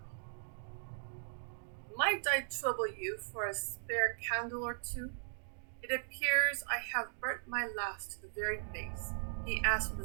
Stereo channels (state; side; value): silent; left; digital silence